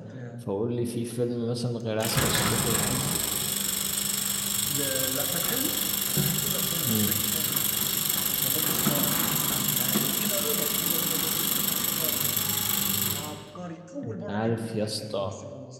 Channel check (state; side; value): identical; both; correlation 1.00